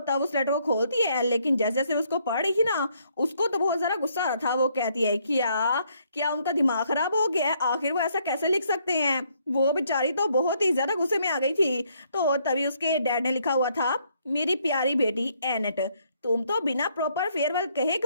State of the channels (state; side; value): inverted; both; correlation -0.70